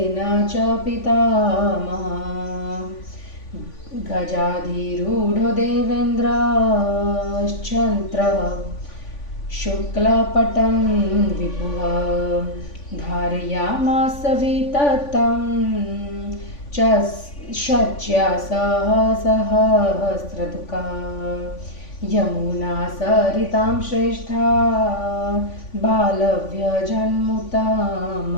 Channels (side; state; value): right; late; 3.5 ms